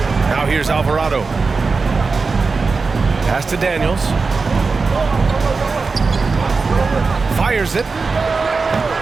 Now here's Alvarado. Pass to Daniels. Fires it.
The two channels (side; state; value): left; quieter; 4.4 dB